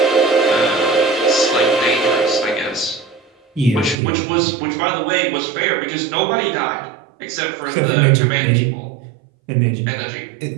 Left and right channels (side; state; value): left; drops out; at 4.0 s